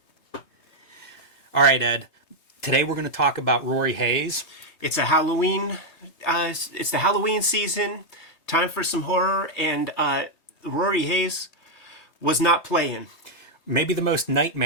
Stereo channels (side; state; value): right; late; 3.2 ms